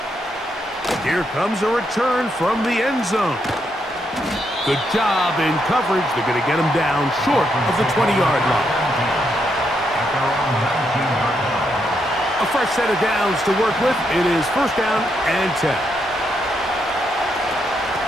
Here comes a return from the end zone. Good job in coverage. They're going to get him down short of the 20-yard line. A fresh set of downs to work with. It is first down and 10.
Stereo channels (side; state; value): both; normal; correlation 0.79